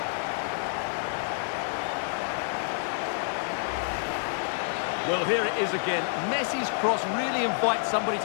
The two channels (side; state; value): right; silent; 59 dB below the other